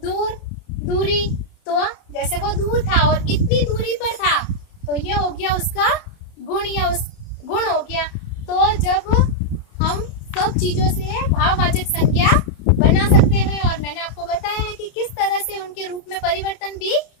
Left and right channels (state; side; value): late; right; 31 ms